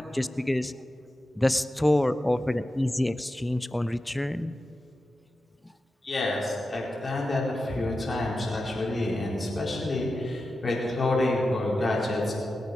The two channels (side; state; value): both; normal; correlation 0.92